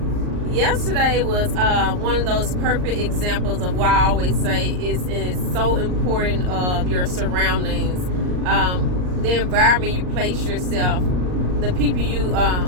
Yesterday was one of those perfect examples of why I always say it's so important of your surroundings, the environment you place yourself, the people you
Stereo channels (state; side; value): late; left; 39 ms